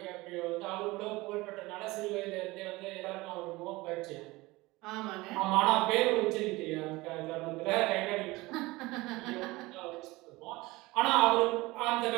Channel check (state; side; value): quieter; left; 21.1 dB